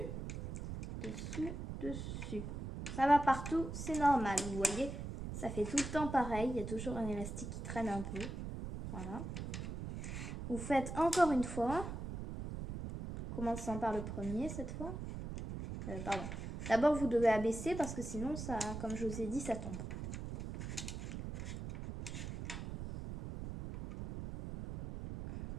dessous, dessus. Ça va partout, c'est normal, vous voyez. Ça fait tout le temps pareil, il y a toujours un élastique qui traîne un peu. Voilà. Vous faites encore une fois. Commençant par le premier cette fois. Pardon. D'abord, vous devez abaisser parce que sinon, ça, comme je vous ai dit, ça tombe.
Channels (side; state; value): right; noise; rumble, 6 dB below the sound